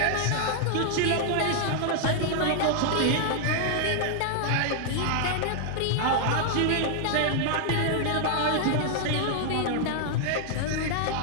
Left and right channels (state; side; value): different; both; correlation 0.00